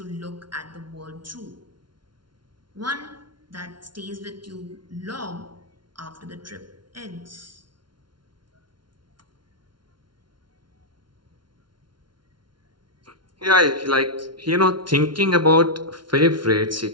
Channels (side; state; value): left; late; 0.72 ms